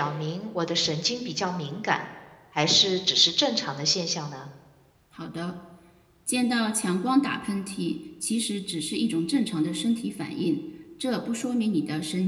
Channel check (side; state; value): both; identical; correlation 1.00